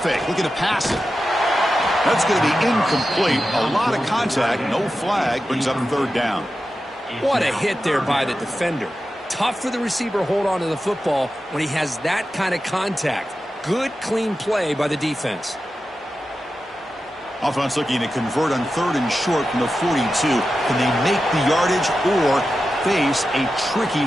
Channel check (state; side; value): normal; both; correlation 0.91